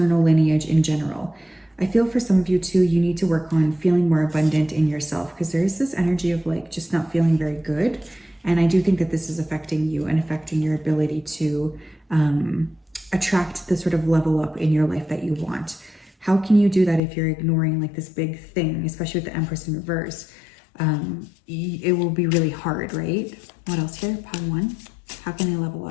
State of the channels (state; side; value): drops out; right; at 17.0 s